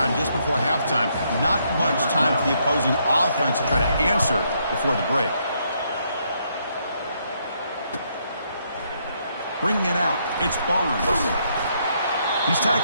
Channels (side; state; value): both; inverted; correlation -0.74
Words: just before halftime. Not much time for the opposing offense to try to answer before the break. Bringing it out, it's Barnes. He's